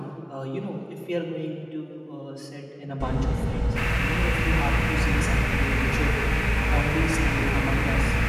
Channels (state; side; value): identical; both; correlation 1.00